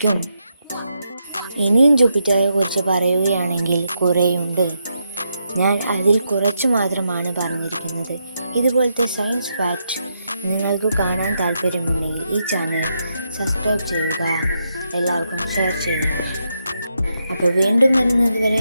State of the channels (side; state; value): both; inverted; correlation -0.82